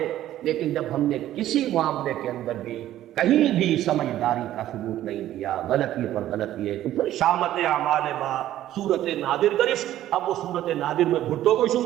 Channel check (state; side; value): quieter; left; 13.1 dB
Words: لیکن جب ہم نے کسی معاملے کے اندر بھی کہیں بھی سمجھداری کا ثبوت نہیں دیا، غلطی پر غلطی ہے، تو پھر شامت اعمال ما صورت نادر گرفت۔ اب وہ صورت نادر میں بھٹو کو